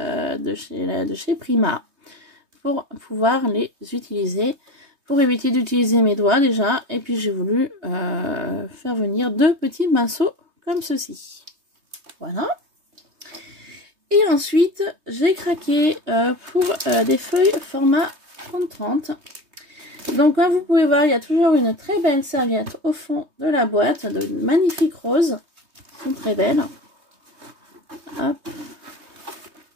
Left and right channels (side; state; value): left; late; 3.2 ms